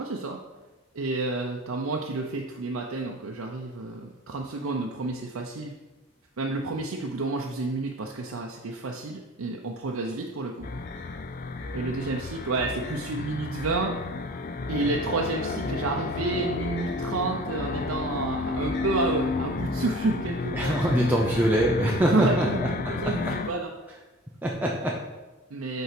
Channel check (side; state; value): both; normal; correlation 0.43